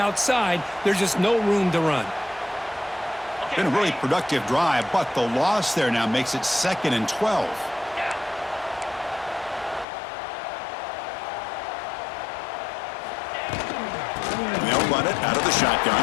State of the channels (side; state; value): right; drops out; at 9.9 s